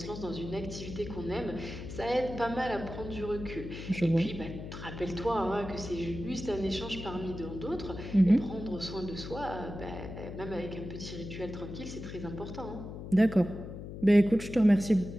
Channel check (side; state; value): left; noise; hum, 9 dB below the sound